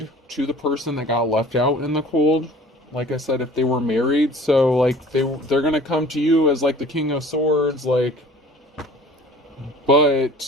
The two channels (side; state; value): both; normal; correlation 0.47